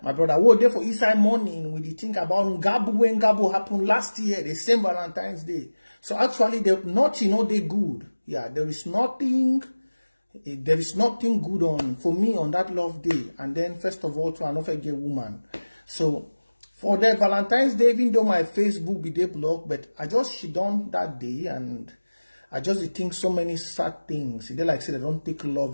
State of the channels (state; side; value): inverted; both; correlation -1.00